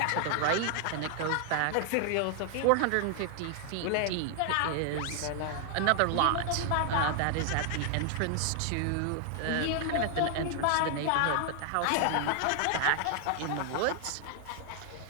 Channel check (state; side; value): different; both; correlation 0.00